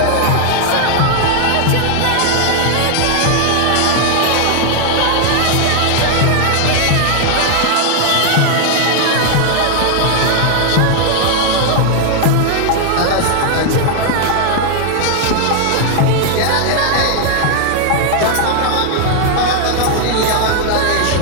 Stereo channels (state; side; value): different; both; correlation 0.00